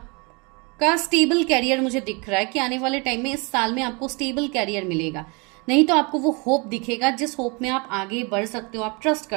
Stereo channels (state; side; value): quieter; left; 30.1 dB